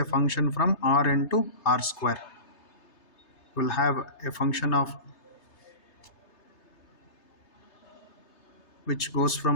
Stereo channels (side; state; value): right; late; 3.3 ms